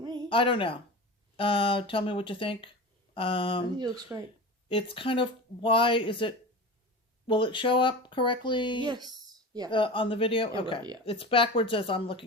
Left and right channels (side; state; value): both; normal; correlation 0.31